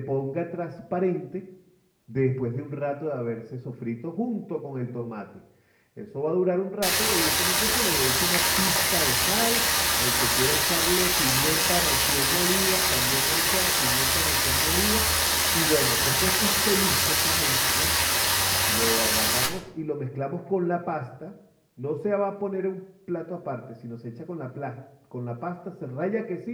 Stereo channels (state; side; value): identical; both; correlation 1.00